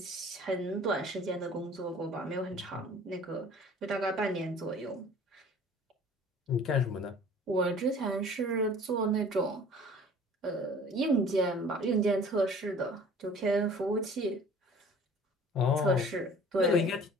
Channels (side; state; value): both; normal; correlation 0.48